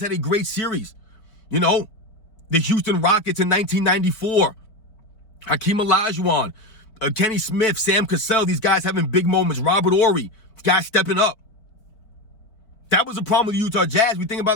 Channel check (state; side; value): late; right; 4.6 ms